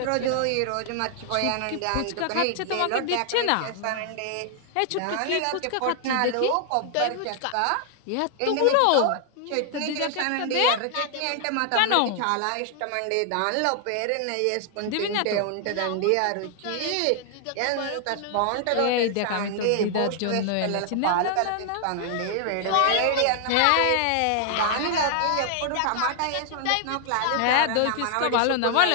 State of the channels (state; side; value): different; both; correlation 0.00